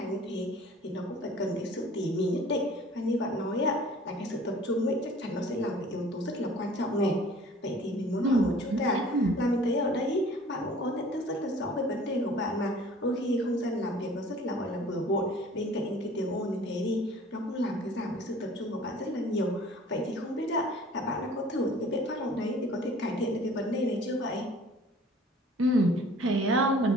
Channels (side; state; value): both; normal; correlation 0.49